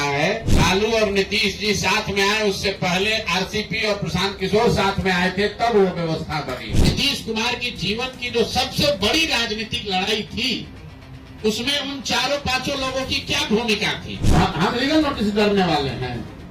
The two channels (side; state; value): both; identical; correlation 1.00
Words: है, लालू और नीतीश जी साथ में आए, उससे पहले आरसीपी और प्रशांत किशोर साथ में आए थे, तब वो व्यवस्था बनी। नीतीश कुमार की जीवन की जो सबसे बड़ी राजनीतिक लड़ाई थी, उसमें उन चारों पांचों लोगों की क्या भूमिका थी। हम लीगल नोटिस करने वाले हैं।